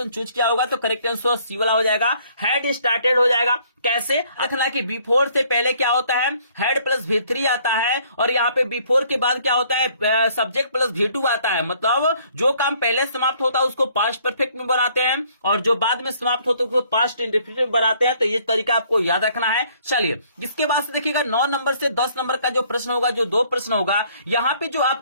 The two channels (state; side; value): inverted; both; correlation -0.62